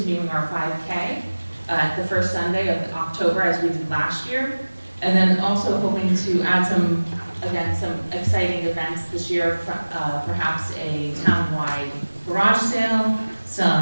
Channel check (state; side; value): inverted; both; correlation -1.00